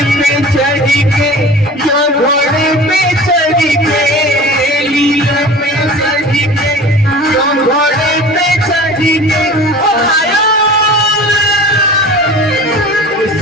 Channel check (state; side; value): normal; both; correlation 0.40